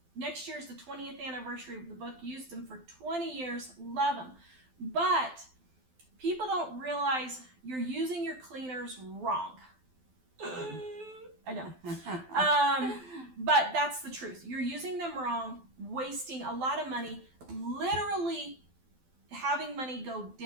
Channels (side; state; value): left; late; 12 ms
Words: Next year is the 20th anniversary of the book. Used them for 20 years, love them. But people don't realize you're using your cleaners wrong. I know. But that's the truth. You're using them wrong, wasting a lot of money, literally having money go